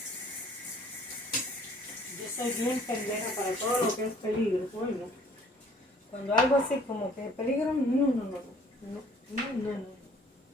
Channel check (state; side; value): normal; both; correlation 0.56